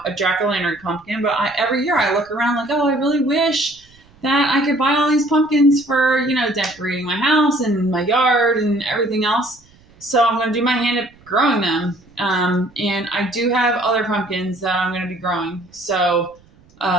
a jack-o'-lantern pumpkin, but every year I look around like, oh, I really wish that I could buy all these pumpkins for, decorating my house and my yard and everything else. So I'm going to do my hand at growing them. And I do have other pumpkins that I'm going to be growing. So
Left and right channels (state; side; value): noise; right; rumble, 29 dB below the sound